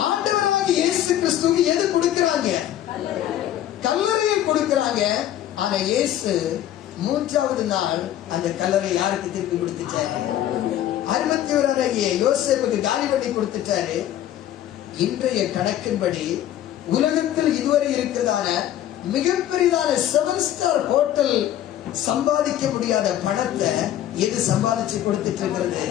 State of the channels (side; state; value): right; quieter; 12.1 dB